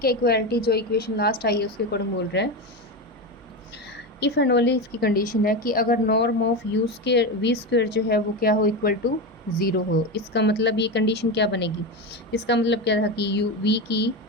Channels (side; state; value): both; normal; correlation 0.18